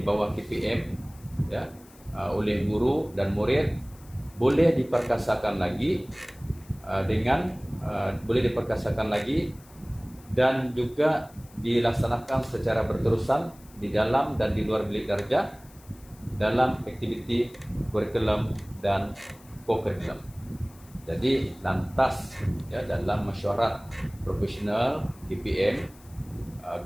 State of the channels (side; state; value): left; noise; hiss, 25 dB below the sound